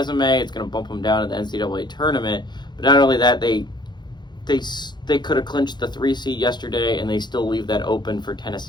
It's going to bump them down in the NCAA tournament. But not only that, they could have clinched the 3 seed yesterday, and they still leave that open for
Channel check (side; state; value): right; late; 0.21 ms